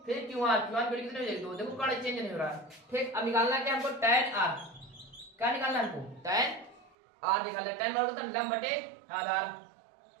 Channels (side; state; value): left; drops out; at 6.9 s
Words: फिर क्यू आर की वैल्यू कितनी हो जाएगी 2, देखो कर्ण चेंज नहीं हो रहा है। ठीक, अब निकालना क्या हमको tan r, क्या निकालना है हमको tan r निकालना है। tan बराबर होता है लंब बटे आधार,